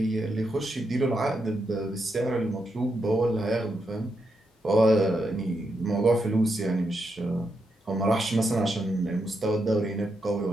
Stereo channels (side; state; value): both; normal; correlation 0.83